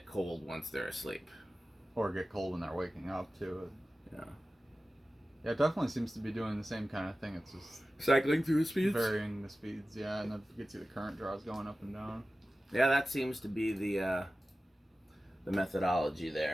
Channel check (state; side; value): normal; both; correlation 0.95